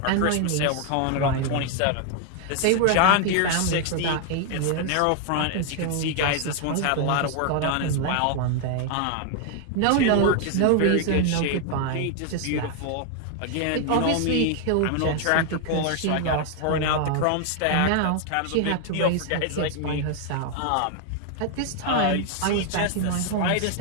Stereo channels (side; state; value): both; different; correlation 0.00